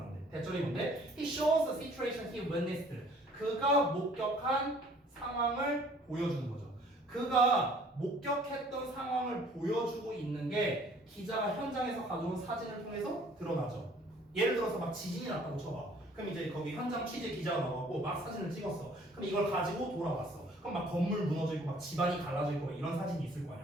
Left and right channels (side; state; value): both; normal; correlation 0.56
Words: 대절이 뭔데? He shows the situation he witnessed. 그가 목격한 상황을 보여주는 거죠. 그가 목격했던 상황을 보여주고 있는 게 기자가 현장에서 가져온 사진을 통해서 드러나죠. 예를 들어서 막 지진이 났다고 쳐봐. 그럼 이제 거기 현장 취재 기자가 나와갖고 막 사진을 찍었어. 그럼 이걸 가지고 돌아왔어. 그럼 막 건물 무너져 있고 막 집안이 갈라져 있고 이런 사진이 있을 거